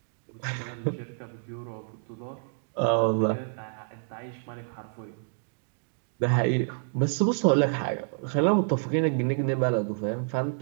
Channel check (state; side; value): silent; left; digital silence